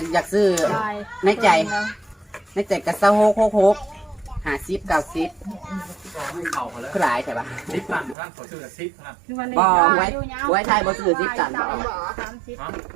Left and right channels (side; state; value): left; drops out; at 8.2 s